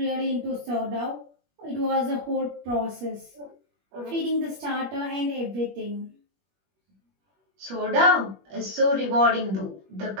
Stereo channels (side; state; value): left; late; 21 ms